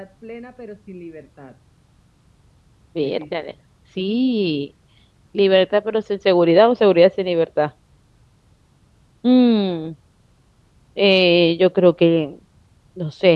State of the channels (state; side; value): identical; both; correlation 1.00